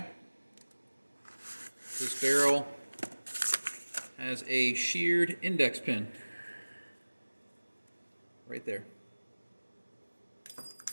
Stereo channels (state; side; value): inverted; both; correlation -1.00